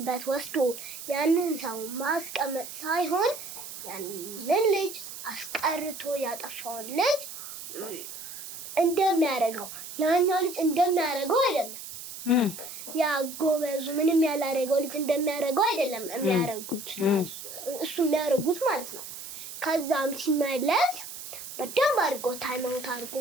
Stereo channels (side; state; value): right; noise; hiss, 11 dB below the sound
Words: ወስዶ ያንን ሰው ማስቀመጥ ሳይሆን ያንን ልጅ አስቀርቶ ያጠፋውን ልጅ እንደሚያደርገው ያኛው ልጅ እንደሚያደርገው አይደለም። ያ ጎበዙ ምንም ያላደረገው ልጅ እንደሚያደርገው አይደለም የሚያደርጉት እሱ የሚያደርጉት ማለት ነው። ከዛም ሲመለስ በደንብ አድርጎ ታይም አውት አድርጎ